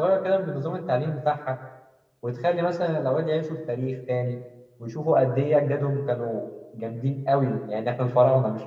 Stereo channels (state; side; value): identical; both; correlation 1.00